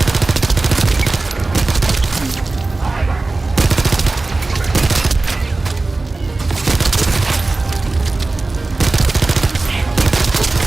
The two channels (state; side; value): quieter; left; 3.3 dB